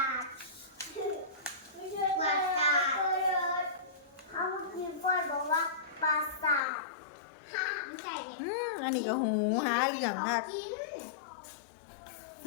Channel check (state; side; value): drops out; right; at 6.6 s